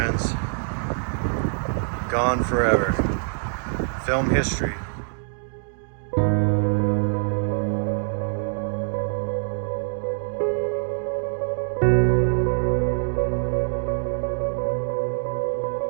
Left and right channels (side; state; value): left; silent; 62 dB below the other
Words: Gone forever. Film history.